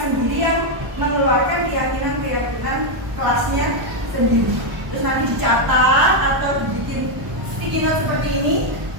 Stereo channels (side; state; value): left; late; 1.0 ms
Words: sendiri yang mengeluarkan keyakinan kelasnya sendiri. Terus nanti dicatat atau dibikin sticky note seperti ini,